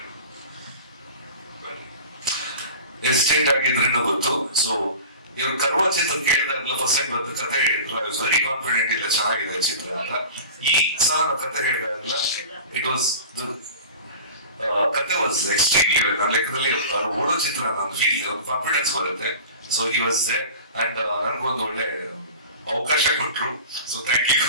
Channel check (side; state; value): both; inverted; correlation -0.36